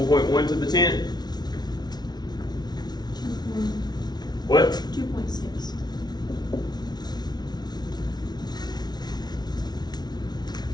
to the 10. What?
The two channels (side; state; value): right; late; 0.19 ms